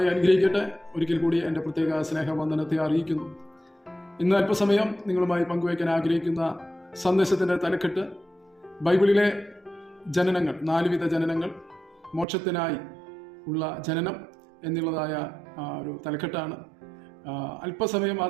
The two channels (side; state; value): left; drops out; at 12.2 s